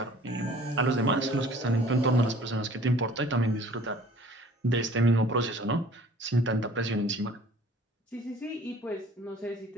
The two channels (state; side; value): normal; both; correlation 0.51